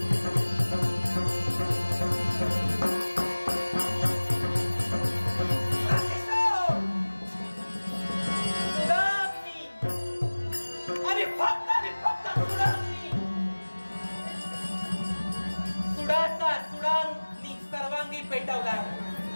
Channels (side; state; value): both; inverted; correlation -1.00